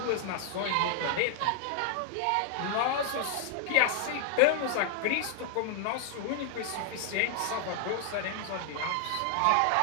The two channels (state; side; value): different; both; correlation 0.00